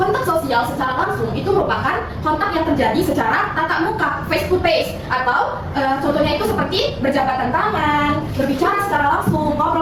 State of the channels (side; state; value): both; identical; correlation 1.00